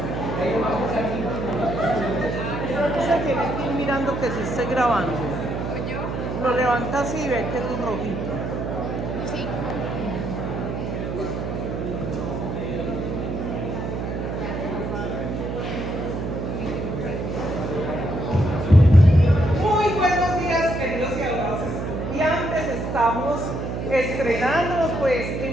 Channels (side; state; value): right; noise; hum, 3 dB below the sound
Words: Ustedes se tienen que ir mirando que se esté grabando. Lo levanta así y ve que es rojito. Sí. Muy buenos días, queridos y adorados estudiantes. Estamos estrenándonos pues